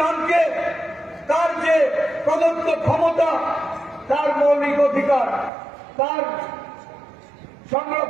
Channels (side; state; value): left; drops out; at 5.5 s